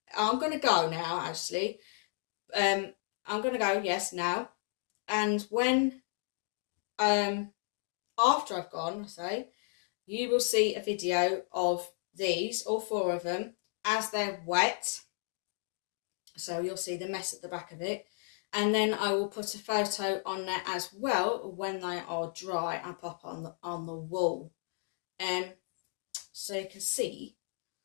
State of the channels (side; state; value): right; silent; 55 dB below the other